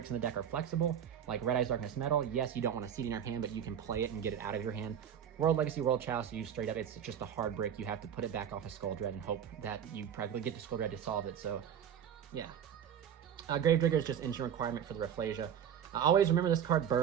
in the deck are flexible, like Red Eyes Darkness Metal. Yes, you don't want to see it in your hand, but you can play it and get it out of your hand. World Legacy, World Chalice, you straight up, it's just a hard brick. You have to put it back off of Skull Dread and hope that you probably get to Skull Dread to solve it. So yeah. Gravedigger is just instant requirement for the Rafflesia. Always remember this card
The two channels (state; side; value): quieter; left; 9.0 dB